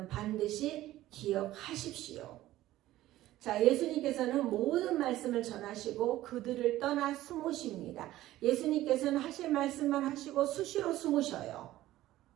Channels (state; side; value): quieter; left; 15.3 dB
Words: 반드시 기억하십시오. 자, 예수님께서는 모든 말씀을 전하시고 그들을 떠나 숨으십니다. 예수님께서는 하실 말씀만 하시고 수시로 숨으셔요.